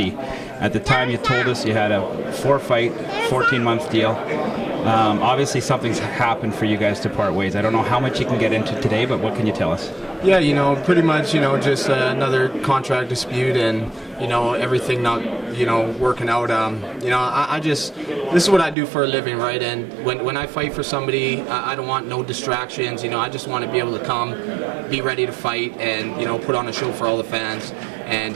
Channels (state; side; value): drops out; left; at 18.8 s